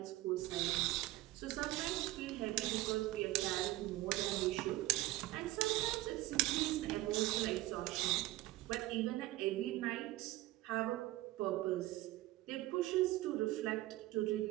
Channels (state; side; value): quieter; left; 17.5 dB